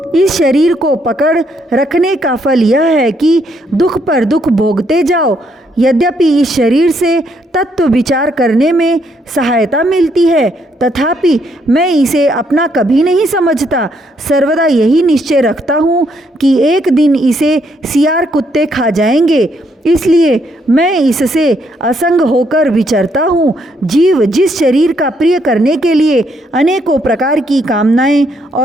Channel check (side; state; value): both; normal; correlation 0.73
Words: इस शरीर को पकड़ रखने का फल यह है कि दुख पर दुख भोगते जाओ। यद्यपि इस शरीर से तत्व विचार करने में सहायता मिलती है, तथापि मैं इसे अपना कभी नहीं समझता। सर्वदा यही निश्चय रखता हूँ कि एक दिन इसे सियार कुत्ते खा जाएंगे, इसलिए मैं इससे असंग होकर विचरता हूँ। जीव जिस शरीर का प्रिय करने के लिए अनेकों प्रकार की कामनाएं